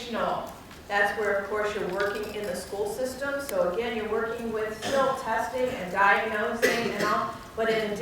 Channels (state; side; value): identical; both; correlation 1.00